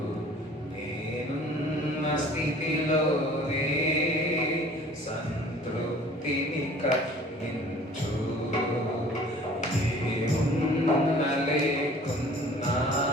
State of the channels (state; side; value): normal; both; correlation 0.49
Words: నేనున్న స్థితిలోనే సంతృప్తిని కలిగించు, ఏమున్నా లేకున్నా